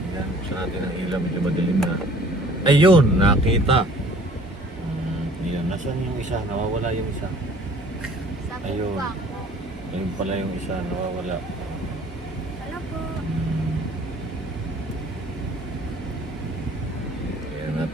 Ayan, buksan natin ang ilaw. Medyo madilim na. Ayun, nakita. Ayan, nasaan yung isa? Nawawala yung isa. Ayun. Ayun pala yung isa, nawawala. Hello po. Ayan,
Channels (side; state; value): both; normal; correlation 0.52